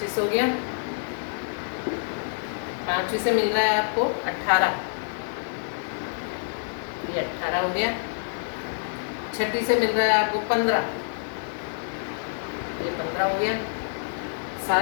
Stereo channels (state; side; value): silent; right; 60 dB below the other